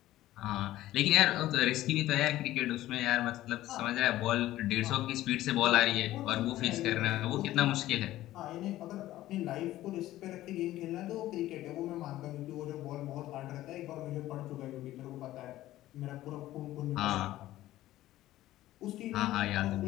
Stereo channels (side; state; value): right; quieter; 15.0 dB